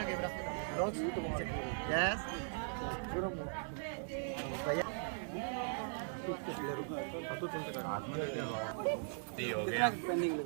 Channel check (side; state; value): left; silent; 51 dB below the other